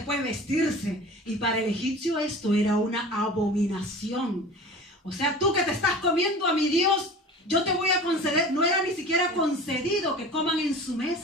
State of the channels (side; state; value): both; normal; correlation 0.38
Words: vestirse. Y para el egipcio esto era una abominación. O sea, tú que te estás comiendo a mi Dios, yo te voy a conceder. No era ni siquiera concedido que coman en su